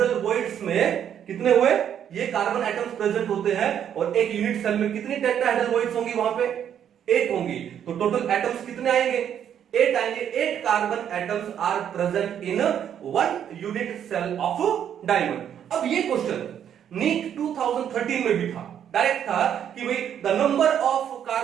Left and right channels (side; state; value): left; quieter; 9.3 dB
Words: वॉइड्स में कितने हुए, ये कार्बन एटम्स प्रेजेंट होते हैं, और एक यूनिट सेल में कितनी टेट्राहेड्रल वॉइड्स होंगी वहां पे 8 होंगी, तो टोटल एटम्स कितने आएंगे 8 आएंगे। 8 carbon atoms are present in 1 unit cell of diamond. अब ये क्वेश्चन नीट 2013 में भी था, डायरेक्ट था कि भाई the number of